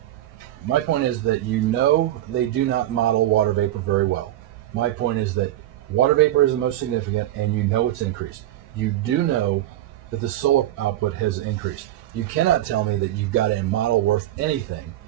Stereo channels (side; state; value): left; quieter; 13.7 dB